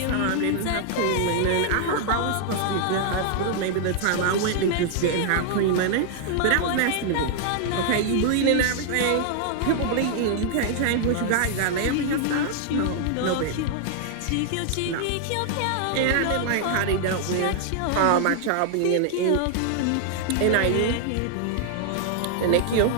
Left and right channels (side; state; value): both; different; correlation 0.00